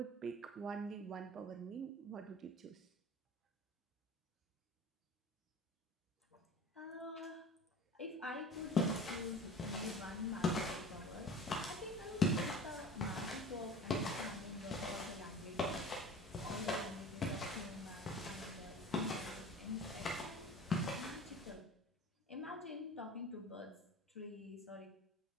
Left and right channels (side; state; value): both; normal; correlation 0.41